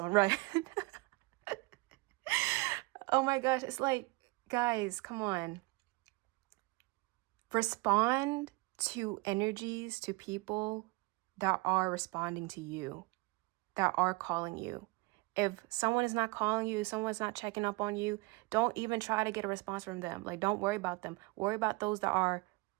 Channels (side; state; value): left; quieter; 25.5 dB